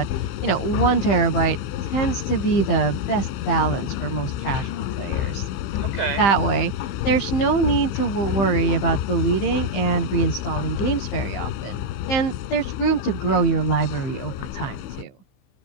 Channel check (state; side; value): late; right; 15 ms